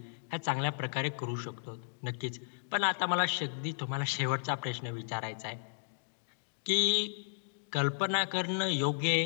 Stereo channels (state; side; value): silent; right; digital silence